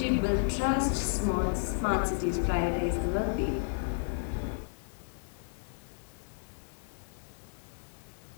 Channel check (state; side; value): silent; right; digital silence